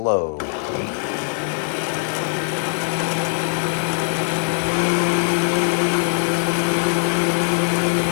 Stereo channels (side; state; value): right; silent; digital silence